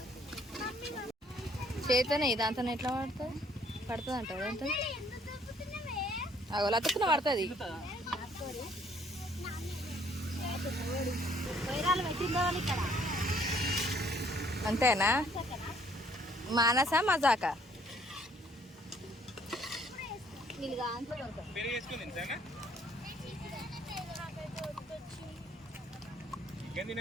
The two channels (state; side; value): normal; both; correlation 0.63